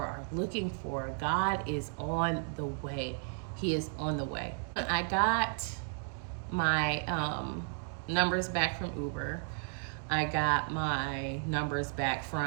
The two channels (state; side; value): silent; left; 55 dB below the other